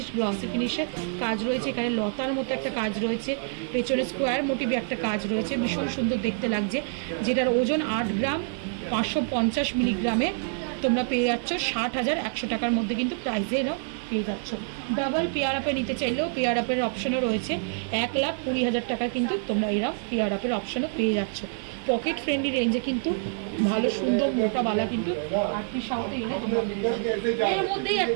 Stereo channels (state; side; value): silent; left; 60 dB below the other